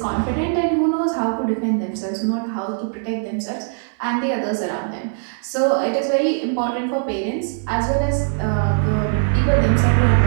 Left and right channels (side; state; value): left; silent; 62 dB below the other